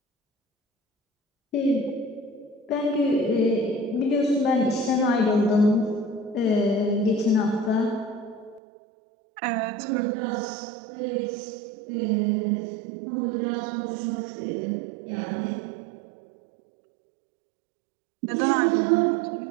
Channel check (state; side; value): drops out; left; at 8.6 s